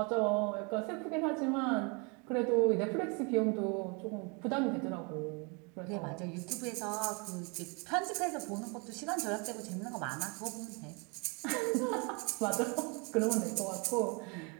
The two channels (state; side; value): quieter; left; 32.3 dB